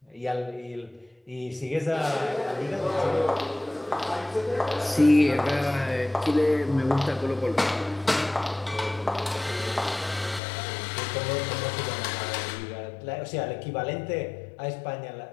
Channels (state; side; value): drops out; right; at 10.4 s